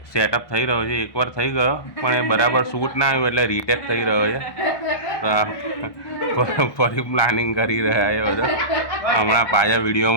સેટઅપ થઈ રહ્યો છે. એકવાર થઈ ગયો પણ એ બરાબર શૂટ ના આવ્યું એટલે રીટેક થઈ રહ્યો છે. તો આ ફરી પ્લાનિંગ કરી રહ્યા છે બધા. હમણાં પાછા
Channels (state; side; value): late; right; 1.2 ms